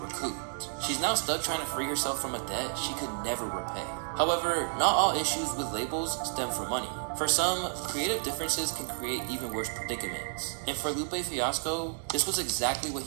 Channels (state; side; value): silent; left; digital silence